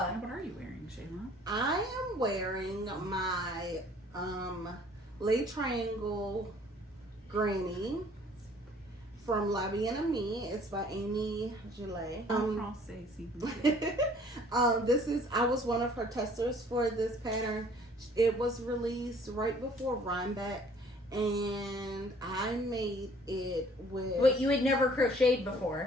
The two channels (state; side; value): normal; both; correlation 0.56